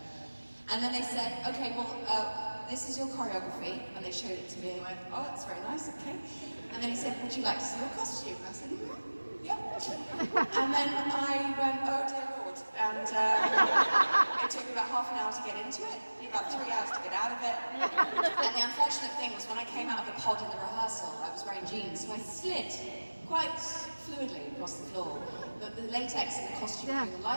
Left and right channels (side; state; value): both; inverted; correlation -1.00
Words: And then they said, okay, well, this is your choreography, and they showed it to me, and I went, oh, that's very nice, okay. And then he said, would you like to see your costume? And I said, yep. And then I went, oh dear Lord, and it took me about half an hour to get into it, about 3 hours to get out of it. And the unfortunate thing was when I came out of the pod in the rehearsal, I was wearing jeans, so I slid quite fluidly across the floor. But the latex in the costume during the